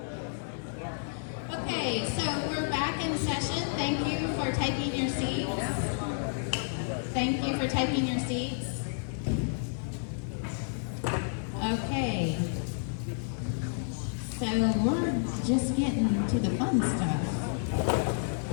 Okay, so we're back in session. Thank you for taking your seats. Thank you for taking your seats. Okay. So we're just getting to the fun stuff.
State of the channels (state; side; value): silent; right; 57 dB below the other